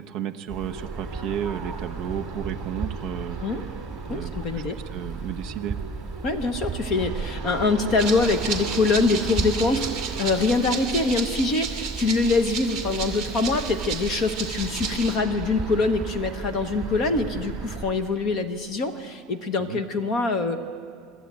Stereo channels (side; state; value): both; normal; correlation 0.44